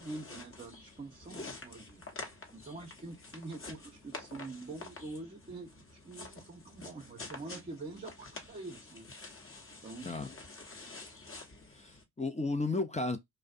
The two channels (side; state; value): both; normal; correlation 0.49